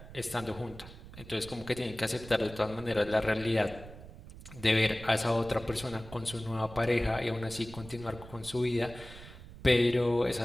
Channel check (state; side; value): noise; right; rumble, 16 dB below the sound